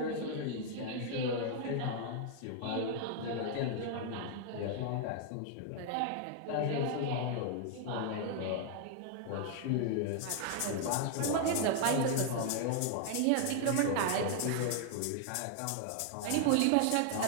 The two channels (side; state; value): both; different; correlation 0.00